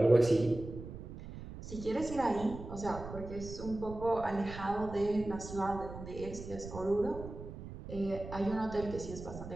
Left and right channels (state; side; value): noise; right; rumble, 11 dB below the sound